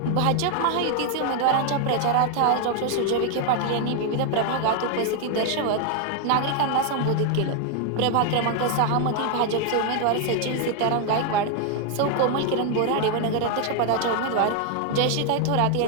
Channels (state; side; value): different; both; correlation 0.00